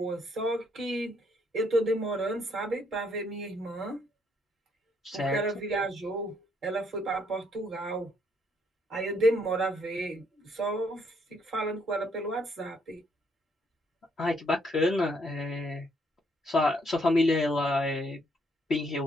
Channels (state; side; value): normal; both; correlation 0.70